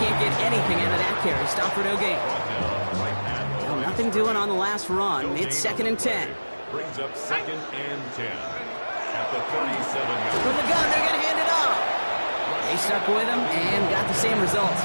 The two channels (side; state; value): both; inverted; correlation -1.00